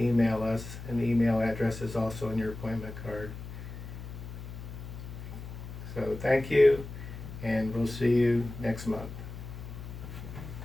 us, and the email address is also on your appointment card. So thank you, and we'll see you next month.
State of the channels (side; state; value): left; noise; hum, 11 dB below the sound